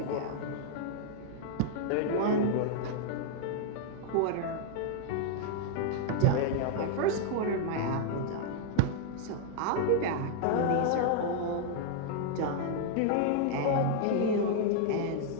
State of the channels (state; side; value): different; both; correlation 0.00